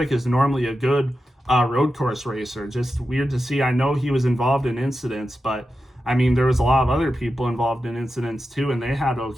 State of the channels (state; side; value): normal; both; correlation 0.91